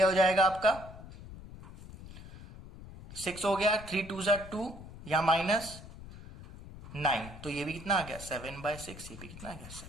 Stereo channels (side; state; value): left; noise; rumble, 15 dB below the sound